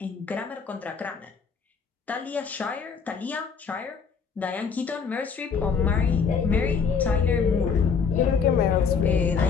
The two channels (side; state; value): right; quieter; 5.9 dB